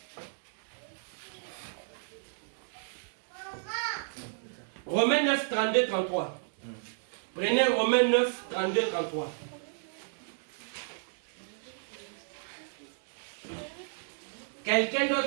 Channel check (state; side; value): silent; left; digital silence